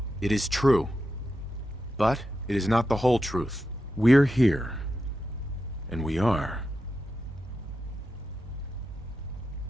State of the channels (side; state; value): both; normal; correlation 0.88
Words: It is true. But it is not the whole truth. We're here. And we are.